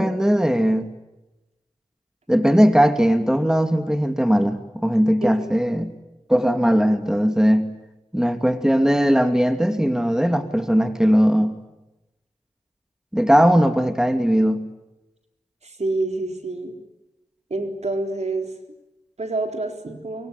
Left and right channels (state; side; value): normal; both; correlation 0.97